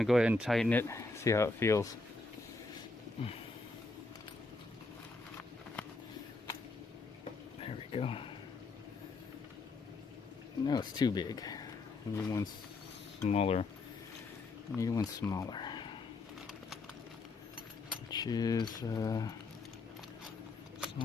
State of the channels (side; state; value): right; quieter; 3.5 dB